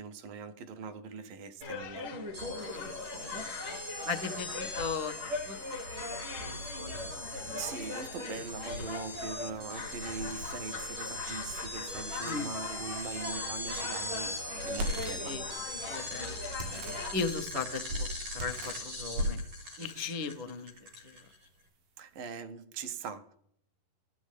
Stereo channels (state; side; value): late; left; 11 ms